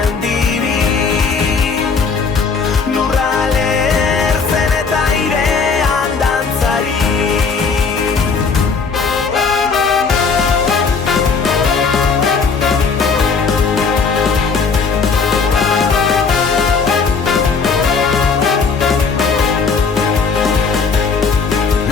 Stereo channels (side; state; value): right; quieter; 5.0 dB